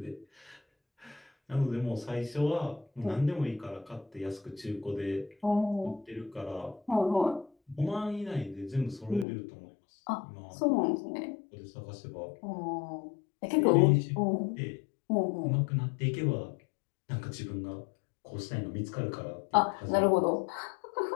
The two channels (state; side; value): drops out; right; at 9.2 s